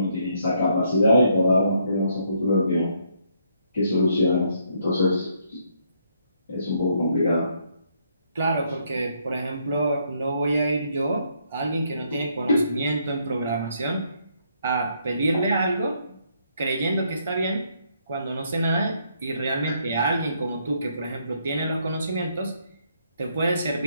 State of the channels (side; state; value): both; inverted; correlation -0.72